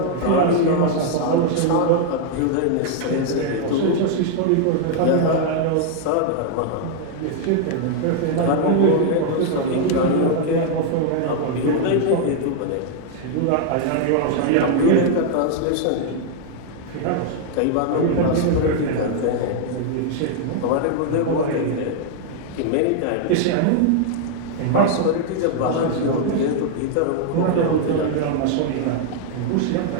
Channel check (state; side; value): different; both; correlation 0.00